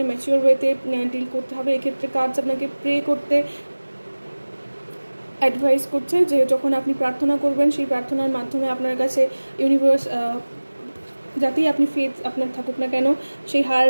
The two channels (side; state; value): both; inverted; correlation -1.00